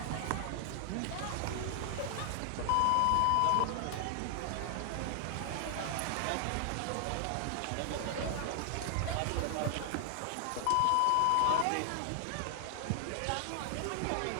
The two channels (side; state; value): both; different; correlation 0.00